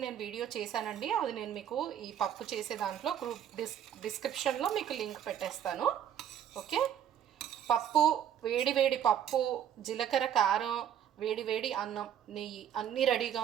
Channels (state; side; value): quieter; left; 9.8 dB